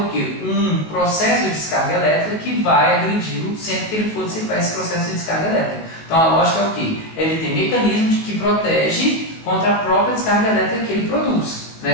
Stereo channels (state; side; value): late; right; 18 ms